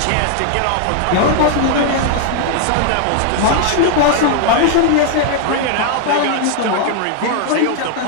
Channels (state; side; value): different; both; correlation 0.00